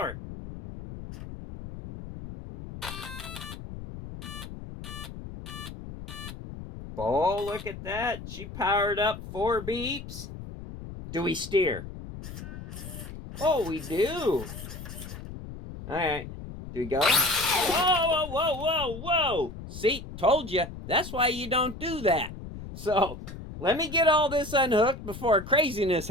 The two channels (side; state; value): left; noise; rumble, 11 dB below the sound